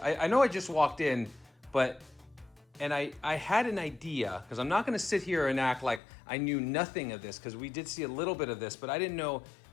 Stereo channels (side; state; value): right; drops out; at 6.0 s